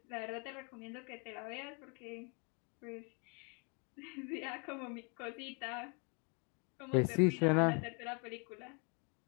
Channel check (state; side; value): quieter; right; 34.6 dB